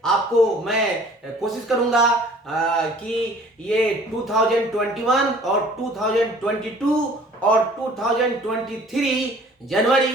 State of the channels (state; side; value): normal; both; correlation 0.52